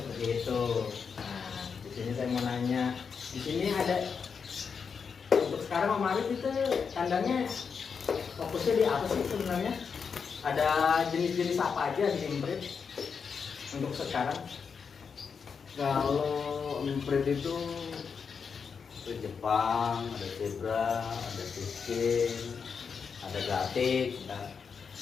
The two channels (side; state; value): right; quieter; 6.0 dB